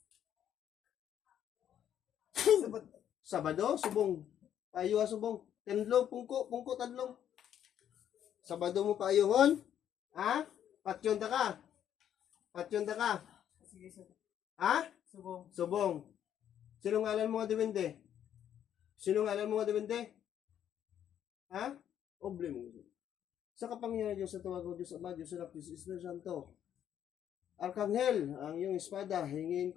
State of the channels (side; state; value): right; quieter; 10.0 dB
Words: Sabado, subong. Payo subong. Tendlo, pungko tadlong. Sabado mo payuhon? Ha? Patyon ta ka? Patyon ta ka? Ha? Subong. Sino ngalan mo nga diwende? Sino ngalan mo nga diwende? Ha? Oble mo. Sa kapangyarihan Diyos sa tawag ko, Diyos Ama, Diyos Anak, Diyos Espiritu Santo. Arkanghel, ang iyong espada, hingin